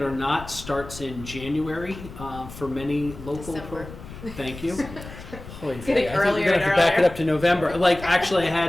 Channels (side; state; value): left; noise; rumble, 14 dB below the sound